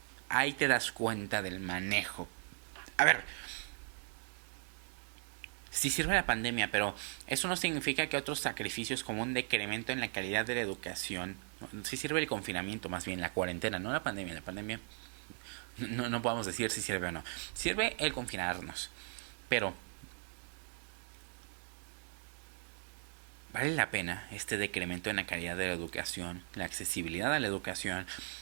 Ahí te das cuenta del manejo. A ver, sí sirve la pandemia, pero eso no significa que otros sacrificios como un decremento en la calidad de la educación, sí sirve el confinamiento, más bien la cuarentena, no la pandemia. La pandemia no podemos decir si sirve o no. Sirve el confinarnos, pero ¿vale la pena este decremento en la calidad de la educación, la accesibilidad a la educación,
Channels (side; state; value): left; silent; 53 dB below the other